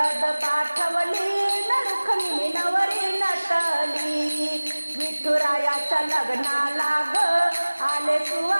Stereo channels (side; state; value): both; inverted; correlation -1.00